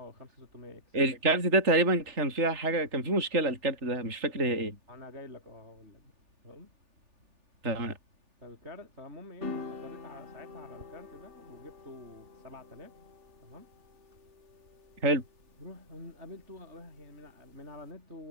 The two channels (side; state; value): left; late; 3.4 ms